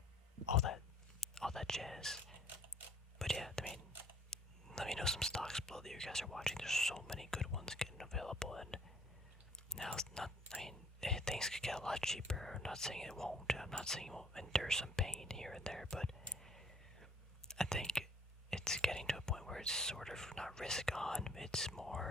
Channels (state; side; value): normal; both; correlation 0.59